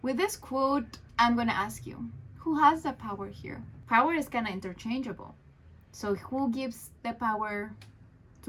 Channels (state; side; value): identical; both; correlation 1.00